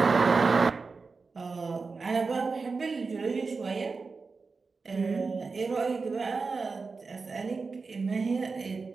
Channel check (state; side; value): quieter; left; 4.4 dB